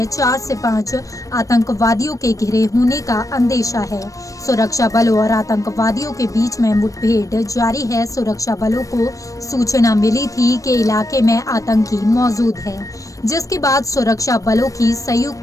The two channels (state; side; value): late; right; 0.16 ms